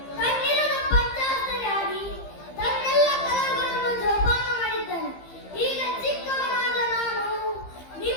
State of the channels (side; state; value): right; late; 15 ms